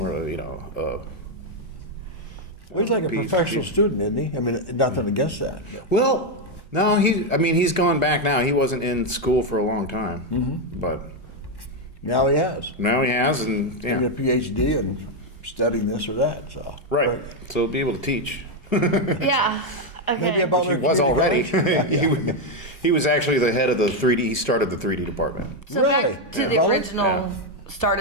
Well, he's like a professional student, isn't he? I mean, nothing against that. well, no, he's gone back now. He wasn't in school for a long time, but Now he has. now he has, and Getting a PhD and studying this or that. So right, But so he'll be able to teach. Yeah. Okay. maybe a Butler He was Community already. College. He was actually the head of the 3D. He started the 3D department. So Really? back to At the Butler? original Yeah. start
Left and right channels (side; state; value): right; late; 1.1 ms